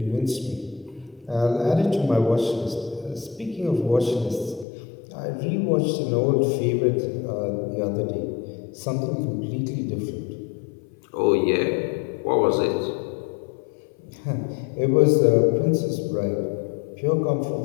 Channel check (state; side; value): drops out; right; at 4.7 s